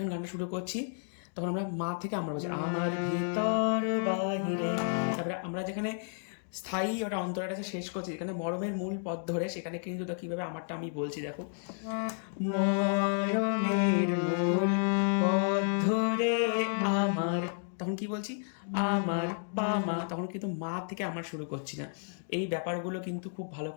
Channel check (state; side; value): silent; right; digital silence